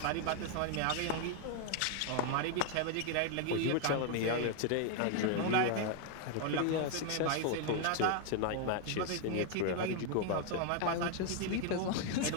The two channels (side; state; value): both; different; correlation 0.00